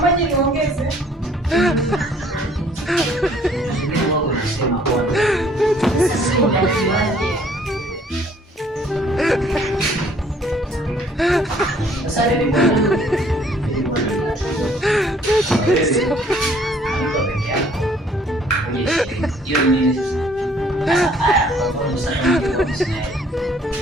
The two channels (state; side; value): normal; both; correlation 0.60